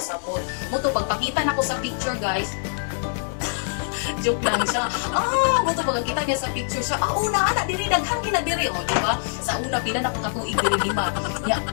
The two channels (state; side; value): silent; right; digital silence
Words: Moto, pagpakita na ko sa picture guys, joke lang siya. Moto pagkita niya sa picture siya, una ana diri daghan gina diri oh, di ba? Sa una pila na ko katuig diri 5. Ya